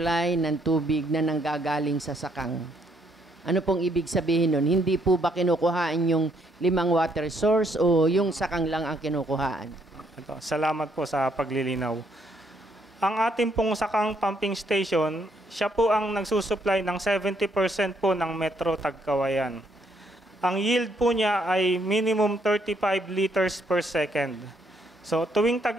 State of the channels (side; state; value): both; normal; correlation 0.71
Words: ng tubig na nanggagaling sa sakang. Ano pong ibig sabihin nun? Hindi po ba kinukuhaan yung 5 water source o yung sakang lang ang kinukuhaan? Ito, salamat po sa paglilinaw. Ang ating pong sakang pumping station, siya po ang nagsusupply ng 70% po ng Metro Tagkawayan. Ang yield po niya ay minimum 35 liters per second. So tuwing